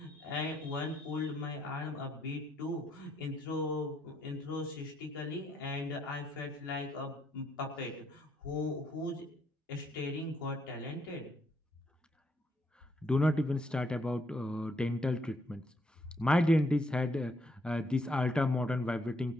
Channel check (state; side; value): normal; both; correlation 0.73